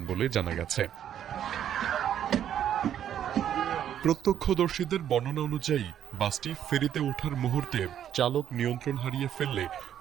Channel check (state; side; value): quieter; left; 10.1 dB